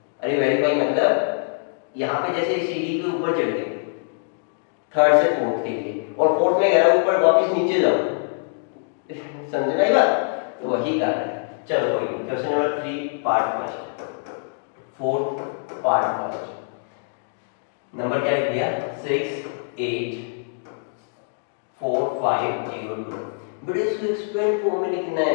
अरे वेरीफाई मतलब यहाँ पे जैसे सीढ़ी के ऊपर चढ़ गए थर्ड से फोर्थ के लिए, और फोर्थ में कह रहा ऊपर वापस नीचे जाओ, समझे भाई बात? तो वही कर रहा है। चलो कोई नहीं, question number 3 part first, fourth part first. Number क्या लिख दिया? 6 8 4 5 0 2। बड़े इसको एक्सपेंड फॉर्म में लिखना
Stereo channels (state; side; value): silent; right; digital silence